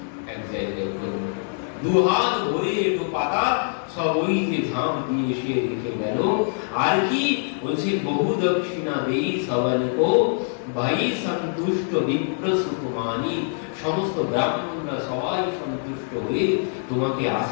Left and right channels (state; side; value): silent; right; 63 dB below the other